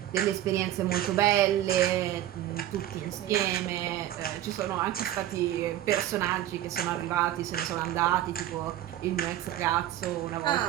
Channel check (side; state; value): left; quieter; 12.9 dB